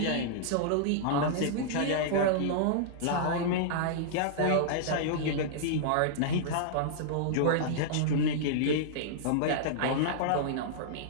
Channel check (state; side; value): different; both; correlation -0.02